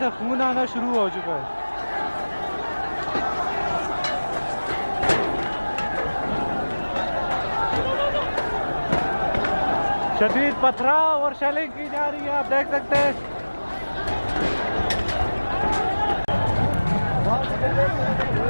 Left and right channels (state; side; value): inverted; both; correlation -1.00